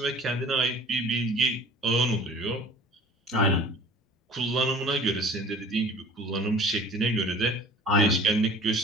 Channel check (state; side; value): normal; both; correlation 0.46